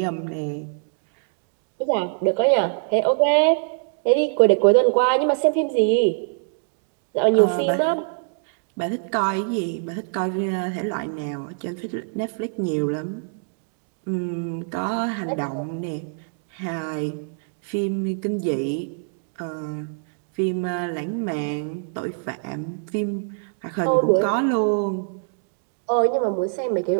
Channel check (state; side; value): silent; left; digital silence